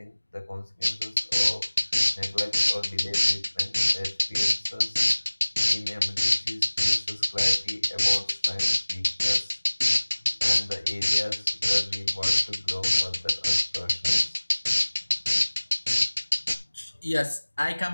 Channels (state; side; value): inverted; both; correlation -1.00